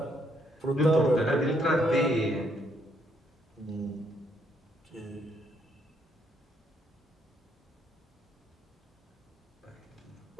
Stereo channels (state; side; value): normal; both; correlation 0.72